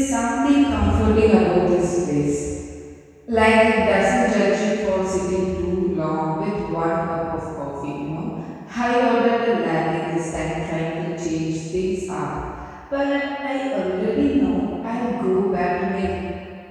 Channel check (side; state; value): both; identical; correlation 1.00